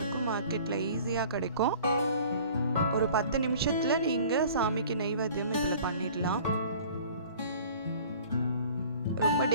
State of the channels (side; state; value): both; inverted; correlation -0.48